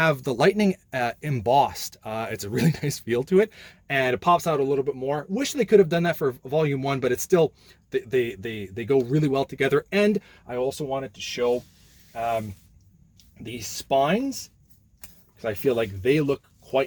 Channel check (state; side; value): identical; both; correlation 1.00